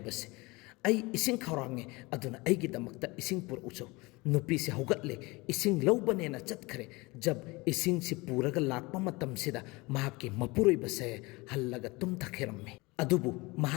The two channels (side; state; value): right; quieter; 24.0 dB